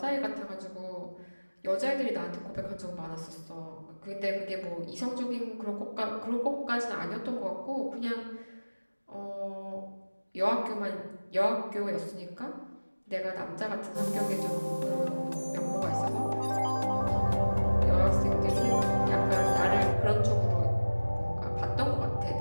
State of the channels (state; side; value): inverted; both; correlation -1.00